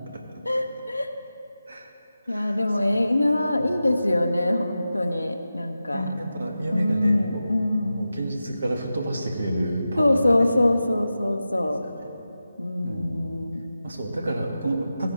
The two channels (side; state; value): both; inverted; correlation -0.92